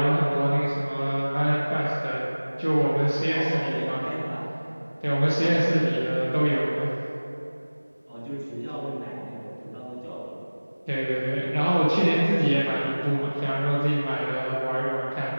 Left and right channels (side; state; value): both; inverted; correlation -1.00